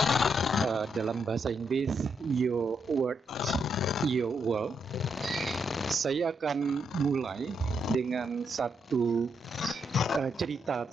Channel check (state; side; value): normal; both; correlation 0.80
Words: Dalam bahasa Inggris, Your Word, Your World. Saya akan mulai dengan satu cerita